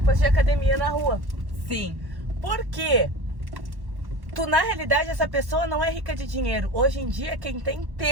de academia na rua. Sim. Por quê? Na realidade, essa pessoa não é rica de dinheiro. Hoje em dia, quem tem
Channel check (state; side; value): late; left; 1.1 ms